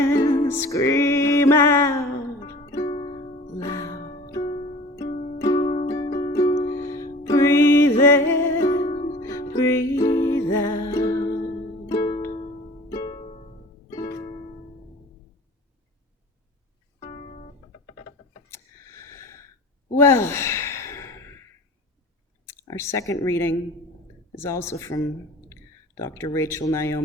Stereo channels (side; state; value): both; normal; correlation 0.42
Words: scream out loud. Breathe in, breathe out. Well, our second reading is also from Dr. Rachel